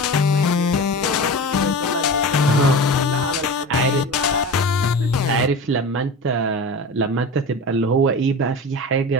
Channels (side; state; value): both; normal; correlation 0.31